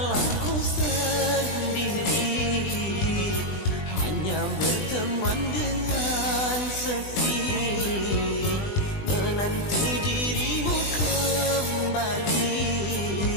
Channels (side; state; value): right; late; 20 ms